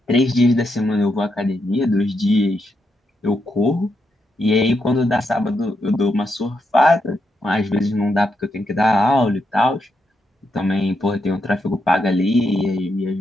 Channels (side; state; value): both; normal; correlation 0.82